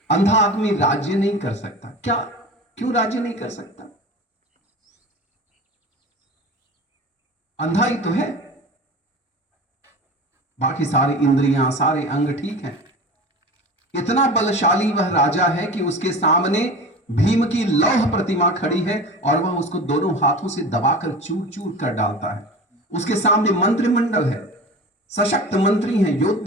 अंधा आदमी राज्य नहीं कर सकता। क्या, क्यों राज्य नहीं कर सकता? अंधा ही तो है, बाकी सारी इंद्रियां, सारे अंग ठीक हैं। इतना बलशाली वह राजा है कि उसके सामने भीम की लौह प्रतिमा खड़ी है और वह उसको दोनों हाथों से दबाकर चूर चूर कर डालता है। उसके सामने मंत्रिमंडल है, सशक्त मंत्री हैं,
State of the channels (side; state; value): both; normal; correlation 0.34